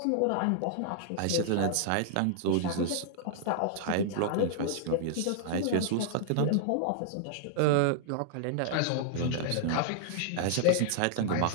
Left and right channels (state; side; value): different; both; correlation -0.01